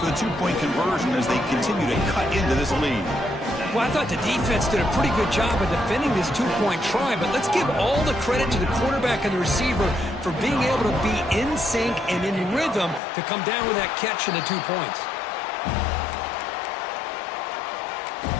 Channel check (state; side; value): drops out; right; at 13.0 s